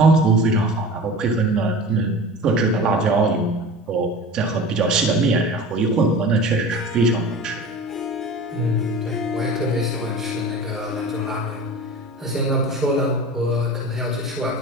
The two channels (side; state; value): both; normal; correlation 0.36